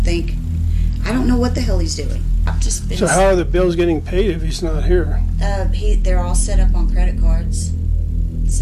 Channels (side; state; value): both; identical; correlation 1.00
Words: think. I don't know what the hell he's doing. I've just been. So how are the bills getting paid if he's not here? They're all set up on credit cards.